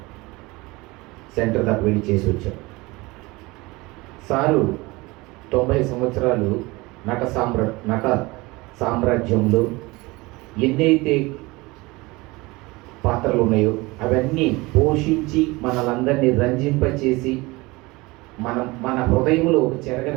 సెంటర్ దాకా వెళ్ళి చేసి వచ్చాం. సారు 90 సంవత్సరాలు నట సామ్రాజ్యంలో ఎన్నైతే పాత్రలు ఉన్నాయో అవన్నీ పోషించి మనలందరినీ రంజింపచేసి మన హృదయంలో ఒక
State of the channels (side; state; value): left; quieter; 22.8 dB